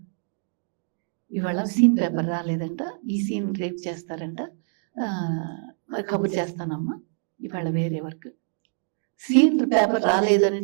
ఇవాళ సీన్ పేపర్ రాలేదంట, ఈ సీన్ రేపు చేస్తారంట, మరి కబుర్ చేస్తానమ్మా, ఇవాళ వేరే వర్క్. సీన్ పేపర్ రాలేదని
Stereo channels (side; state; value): left; silent; digital silence